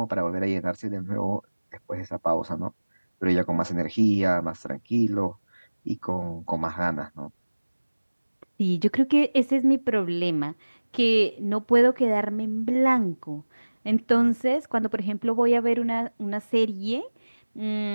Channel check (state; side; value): inverted; both; correlation -1.00